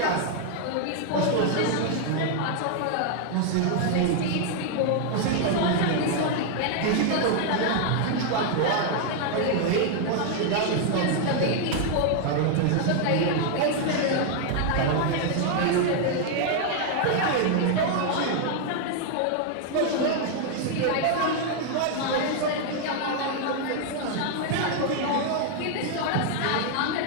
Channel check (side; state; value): both; different; correlation 0.00